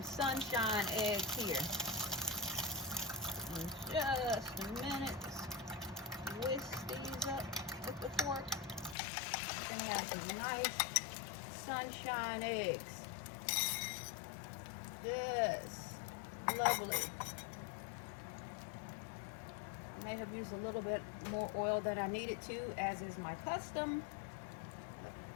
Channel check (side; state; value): right; drops out; at 9.0 s